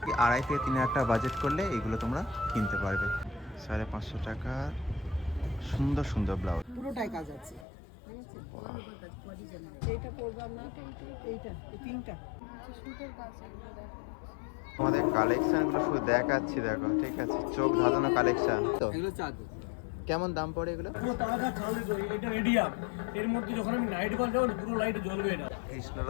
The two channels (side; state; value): right; drops out; at 7.7 s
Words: 2,500 থেকে 3,000 টাকা বাজেট করলে এগুলো তোমরা কিনতে পারবে। 550 টাকা সুন্দর সুন্দর ব্লাউজ, পুরোটাই কাজ আছে। এইটা পরবো না, এইটা এই পিঙ্কটা সুন্দর কাজ এগুলো দেখো। আমাদের কালেকশনগুলো শুধু দেখাচ্ছি, দেখো ঠিক আছে, চোখ ধাঁধানো কালেকশন। তো এগুলো চাদর কেমন দাম পড়ে এগুলো? পুরো তাজা চাল, এটা রেডিয়াম। এর মধ্যে যখন আমি নাইট বাল যাবো পুরো লাইট জ্বলবে। এটা